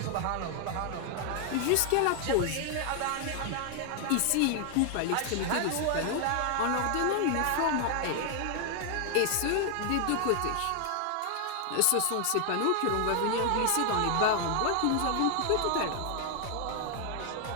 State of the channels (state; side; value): different; both; correlation 0.00